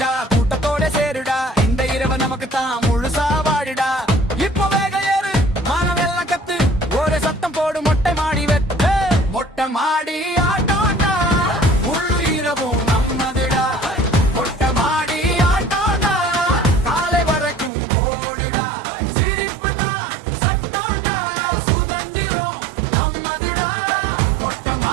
கூட்டத்தோட சேருடா, இந்த இரவு நமக்கு தான் முழுசா வாடிடா. இப்போ வேக ஏறு, மானவெல்லாம் கத்து, ஒரு சத்தம் போடு, மொட்டை மாடி வெட்டு. மொட்டை மாடி ஆட்டோண்டா, முழு இரவும் நம்மதுடா. மொட்டை மாடி ஆட்டோண்டா, காலை வரைக்கும் போடுடா. சிரிப்பு தான் சட்டோண்டா, சுதந்திரம் நம்மதுடா. மொட்டை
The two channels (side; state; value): left; drops out; at 17.7 s